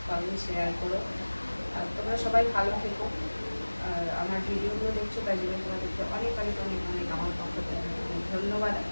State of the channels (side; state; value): both; inverted; correlation -1.00